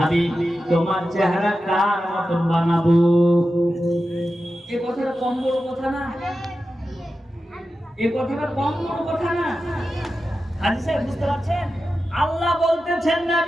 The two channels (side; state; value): both; normal; correlation 0.92